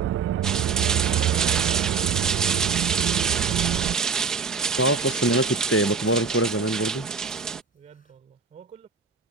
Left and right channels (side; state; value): left; quieter; 5.1 dB